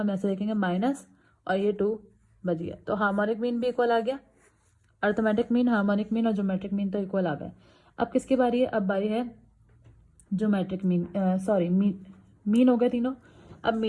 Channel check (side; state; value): both; identical; correlation 1.00